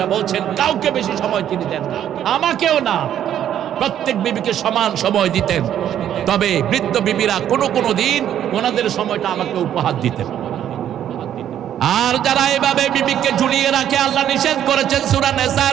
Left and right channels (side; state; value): left; quieter; 10.5 dB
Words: বলছেন কাউকে বেশি সময় তিনি দেন না, আমাকেও না, প্রত্যেক বিবিকে সমান সময় দিতেন। তবে বৃদ্ধ বিবিরা কোনো দিন ওনাদের সময়টা আমাকে উপহার দিতেন। আর যারা এভাবে বিবিকে ঝুলিয়ে রাখে, আল্লাহ নিষেধ করেছেন সূরা